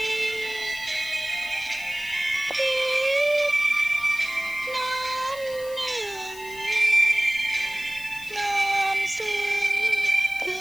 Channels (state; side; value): noise; left; hiss, 17 dB below the sound